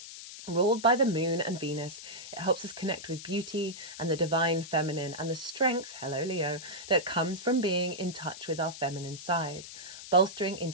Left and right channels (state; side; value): noise; left; hiss, 12 dB below the sound